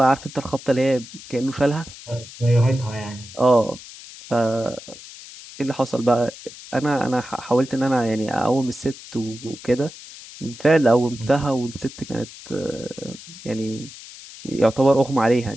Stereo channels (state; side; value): noise; left; hiss, 16 dB below the sound